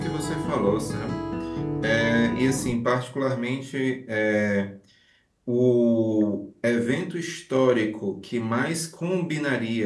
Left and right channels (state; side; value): identical; both; correlation 1.00